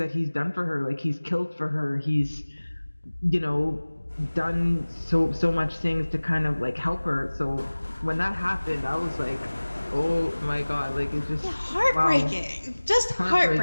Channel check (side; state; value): both; inverted; correlation -1.00